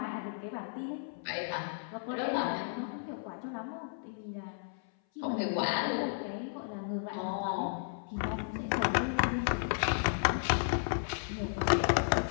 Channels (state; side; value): silent; right; 55 dB below the other